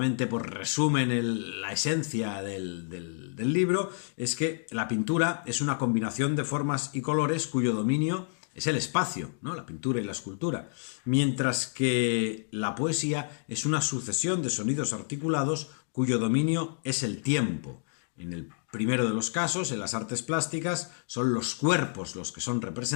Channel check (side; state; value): right; silent; digital silence